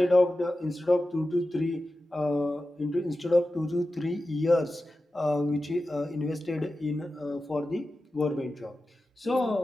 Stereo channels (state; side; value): normal; both; correlation 0.93